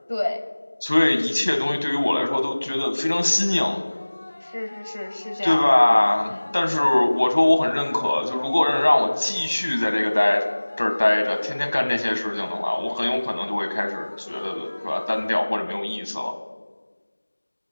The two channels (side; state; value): both; inverted; correlation -1.00